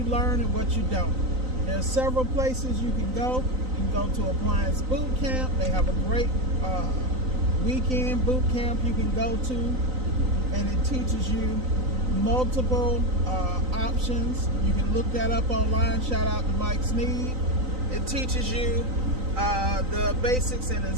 learn and what you don't. There are several places you can go. You can go to Appliance Boot Camp. They have a great weekend boot camp you can go to, and it teaches you multiple options. You can look that up online. Shout out to Mike Sneed. It teaches you the basics in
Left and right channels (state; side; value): late; left; 3.9 ms